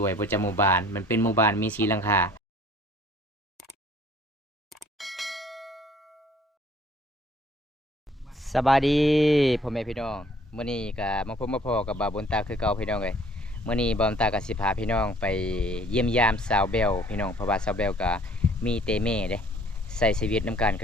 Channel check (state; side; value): normal; both; correlation 0.57